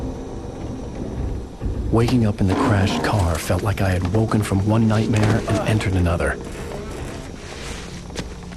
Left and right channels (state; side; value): identical; both; correlation 1.00